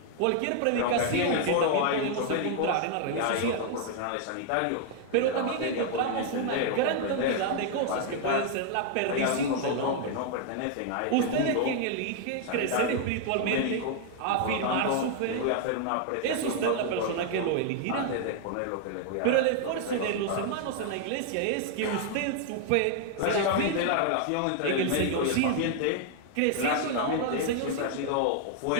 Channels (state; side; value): different; both; correlation 0.00